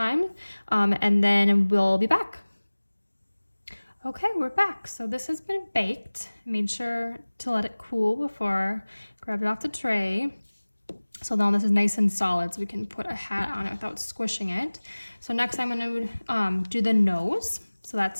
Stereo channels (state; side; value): inverted; both; correlation -1.00